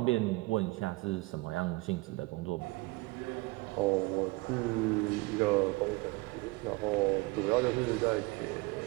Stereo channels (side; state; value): left; quieter; 23.5 dB